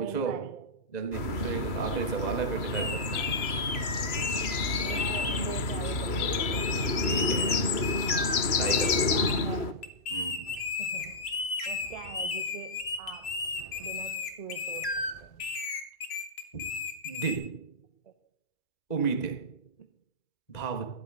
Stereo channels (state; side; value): late; right; 2.3 ms